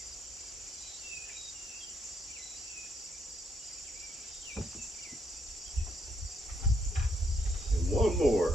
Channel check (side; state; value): both; normal; correlation 0.75